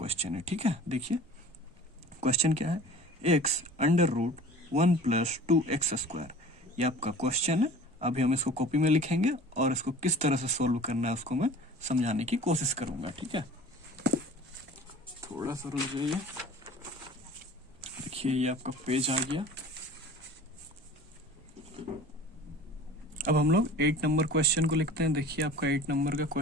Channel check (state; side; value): normal; both; correlation 0.43